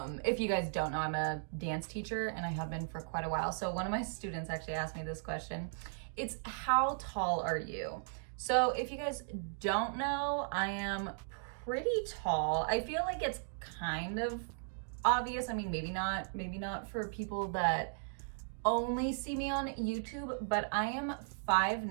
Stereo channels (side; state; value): left; silent; digital silence